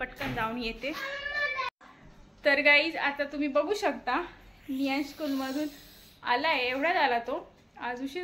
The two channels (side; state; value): both; identical; correlation 1.00